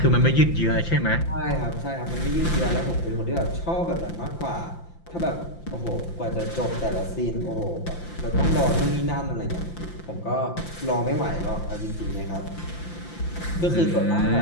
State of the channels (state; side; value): late; right; 5.8 ms